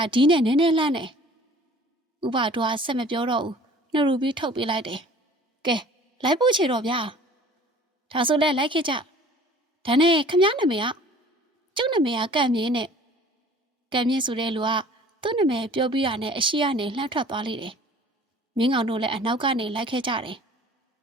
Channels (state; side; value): normal; both; correlation 0.49